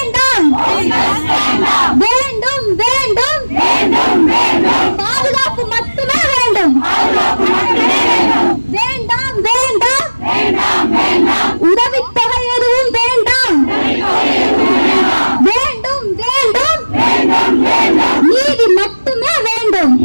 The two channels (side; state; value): both; inverted; correlation -1.00